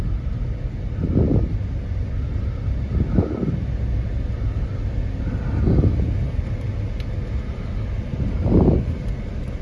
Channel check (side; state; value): both; identical; correlation 1.00